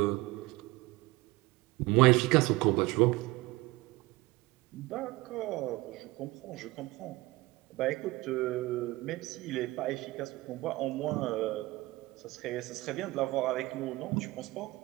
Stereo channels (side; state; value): left; quieter; 20.8 dB